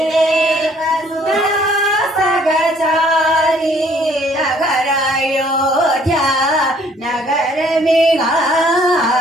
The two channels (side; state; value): both; normal; correlation 0.60